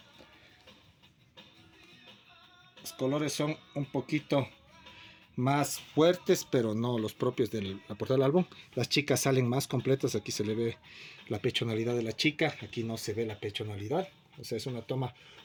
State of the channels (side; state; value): both; identical; correlation 1.00